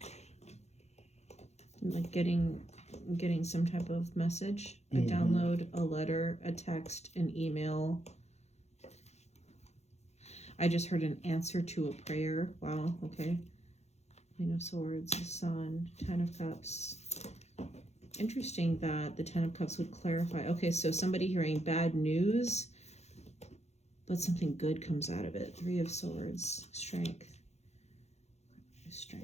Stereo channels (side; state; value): right; late; 0.32 ms